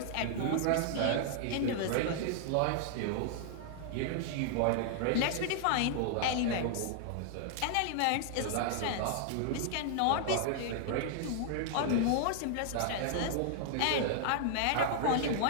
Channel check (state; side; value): different; both; correlation -0.01